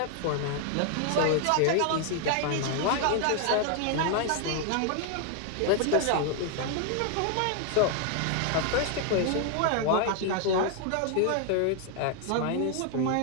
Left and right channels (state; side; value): different; both; correlation 0.00